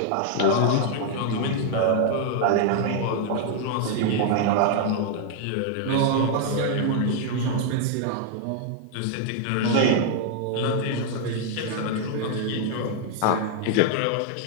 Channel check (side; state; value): both; different; correlation 0.00